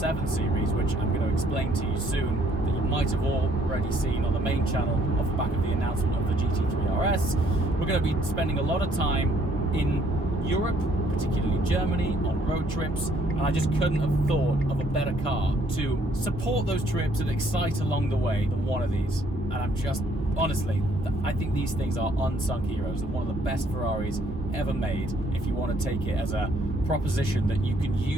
series, which I'm going to explain to you soon, that you might have already seen on the main channel off the back of the announcement of the GT3 RS, we're going to be spending a lot of time in Europe, particularly Germany, on road trips, and I just couldn't have thought of a better car to support those trips and excite along the way than one of these. And I'm just, honestly, I think these things are unsung heroes and one of the best Ferraris ever made, if you want to take it as a proposition that you can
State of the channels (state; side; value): normal; both; correlation 0.65